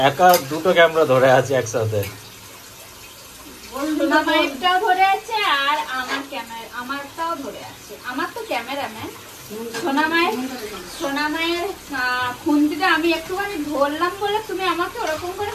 একা দুটো ক্যামেরা ধরে আছি একসাথে। সোনামায়েরটাও ধরে আছে আর আমারটাও ধরে আছে। আমার তো ক্যামেরাম্যান। সোনামায়ের খুন্তিটা আমি একটুখানি ধরলাম বলে তুমি আমাকে ওরকম করে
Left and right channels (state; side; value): identical; both; correlation 1.00